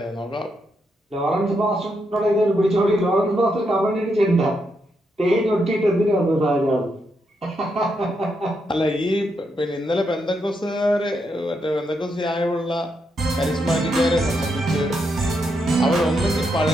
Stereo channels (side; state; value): both; normal; correlation 0.81